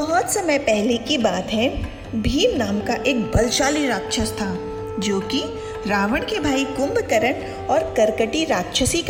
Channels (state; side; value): identical; both; correlation 1.00